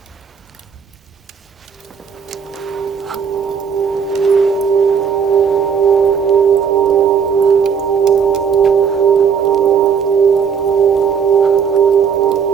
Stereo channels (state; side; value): quieter; left; 6.9 dB